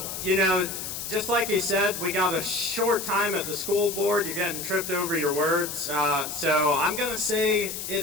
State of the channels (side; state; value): left; noise; hiss, 6 dB below the sound